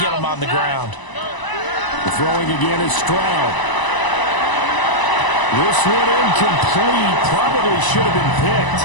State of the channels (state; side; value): late; right; 1.0 ms